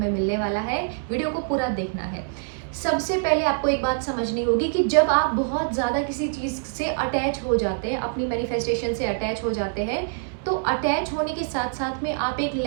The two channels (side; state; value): left; silent; 62 dB below the other